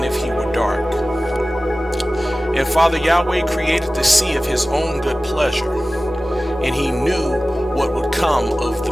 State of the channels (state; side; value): normal; both; correlation 0.97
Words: if he were dark. And Father Yahweh created the sea of his own good pleasure, and he knew what would come of the